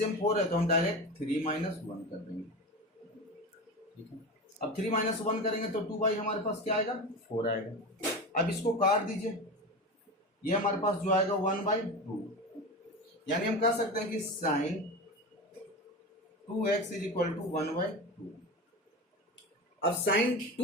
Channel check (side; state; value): both; normal; correlation 0.26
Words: 4 है तो हम डायरेक्ट 3 माइनस 1 कर देंगे, ठीक है। अब 3 माइनस 1 करेंगे तो 2 बाई हमारे पास क्या आएगा 4 आएगा। अब इसको काट दीजिए, ये हमारे पास जो आएगा 1/2, यानी हम कह सकते हैं कि sign 2x is equal to 1/2। अब sign